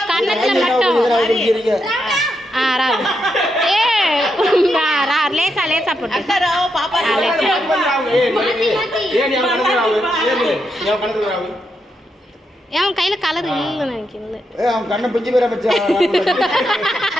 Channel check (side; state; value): both; normal; correlation 0.82